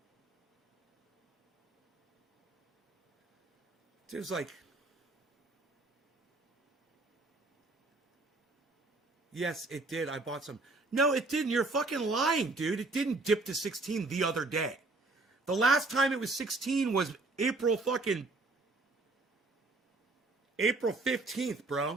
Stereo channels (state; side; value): quieter; left; 3.3 dB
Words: There's like, yes, it did. I bought some. No, it didn't. You're fucking lying, dude. It didn't dip to 16 the other day. The last time it was 16 was April 15th,